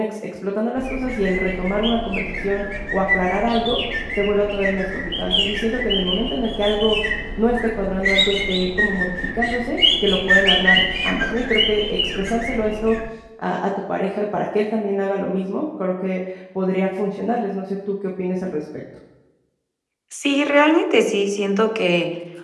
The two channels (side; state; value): both; identical; correlation 1.00